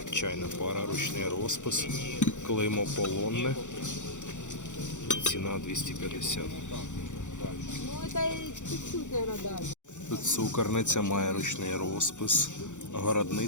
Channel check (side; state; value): right; late; 0.85 ms